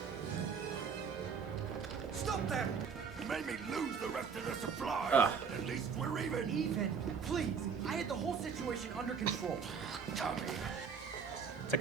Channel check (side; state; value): left; quieter; 6.1 dB